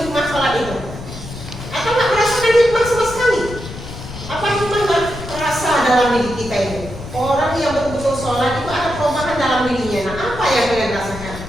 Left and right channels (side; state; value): left; noise; rumble, 11 dB below the sound